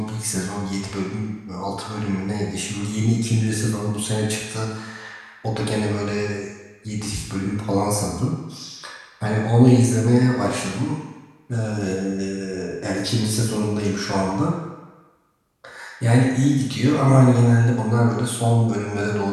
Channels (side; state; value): both; identical; correlation 1.00